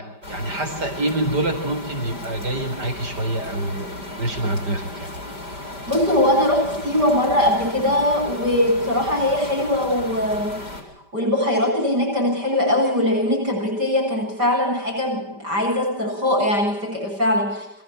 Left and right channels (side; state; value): left; late; 5.1 ms